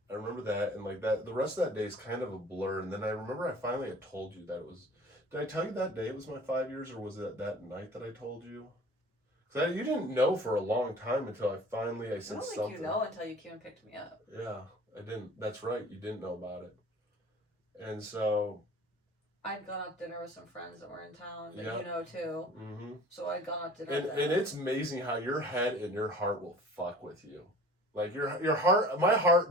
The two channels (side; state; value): both; normal; correlation 0.45